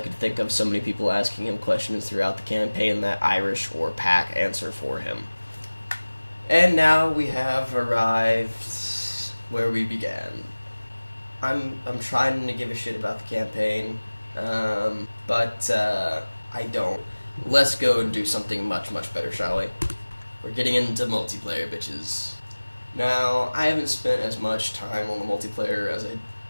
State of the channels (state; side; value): inverted; both; correlation -1.00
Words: think of so many people asking him questions throughout the campaign that Irish or Pack answer for him. And now we have arrived where we began. I'm trying to give a shit about the campaign, but I don't. Let's go and do something much, much better, shall we? We're getting into multiplayer, bitches. Now, I haven't spent as much time on the multiplayer